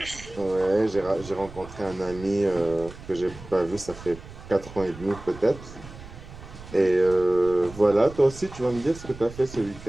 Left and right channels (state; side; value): noise; right; rumble, 16 dB below the sound